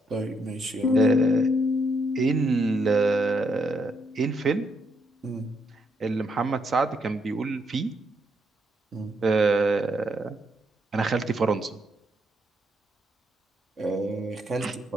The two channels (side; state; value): both; normal; correlation 0.75